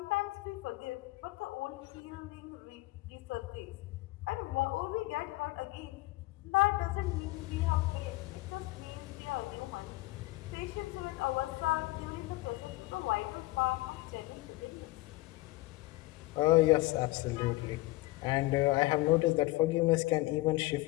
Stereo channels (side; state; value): right; quieter; 20.3 dB